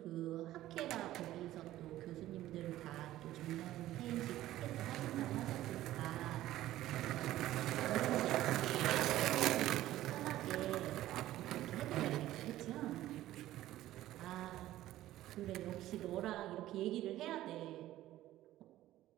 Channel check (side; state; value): left; quieter; 14.6 dB